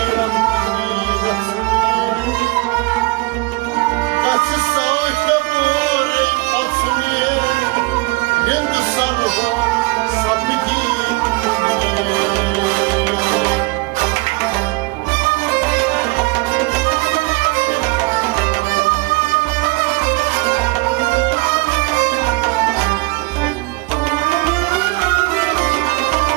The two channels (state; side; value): quieter; left; 25.7 dB